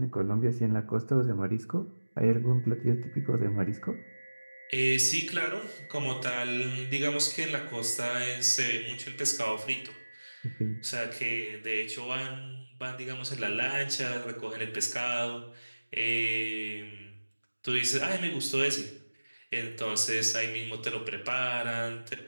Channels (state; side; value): inverted; both; correlation -1.00